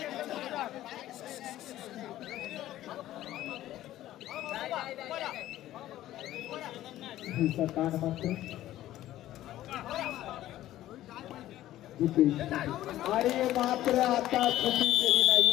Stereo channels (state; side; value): quieter; right; 14.0 dB